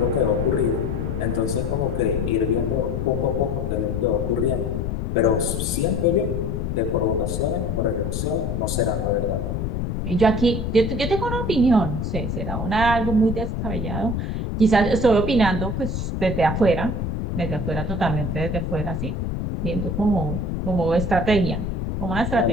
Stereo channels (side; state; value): left; noise; rumble, 2 dB below the sound